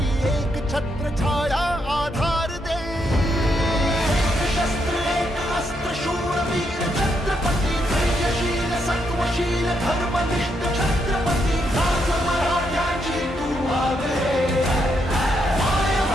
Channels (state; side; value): normal; both; correlation 0.78